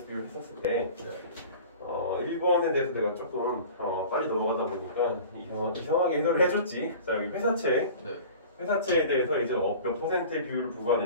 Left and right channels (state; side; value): inverted; both; correlation -0.41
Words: 비율 했었을 때 1번에 대해서 내가 조금 빨리 넘어가다 보니까 이상하게 해설을 해줬지. 자, 여기 회사채. 회사채에 대해서 이제 몇 퍼센트의 비율을